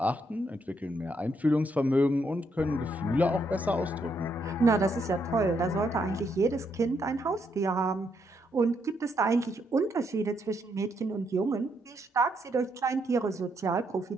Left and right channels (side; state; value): both; normal; correlation 0.76